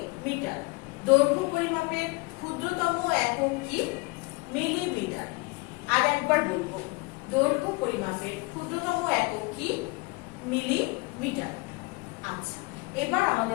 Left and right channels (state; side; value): quieter; right; 26.9 dB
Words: দৈর্ঘ্য পরিমাপের ক্ষুদ্রতম একক কি? মিলিমিটার। আর একবার বলবো, দৈর্ঘ্য পরিমাপের ক্ষুদ্রতম একক কি? মিলিমিটার। আচ্ছা, এবার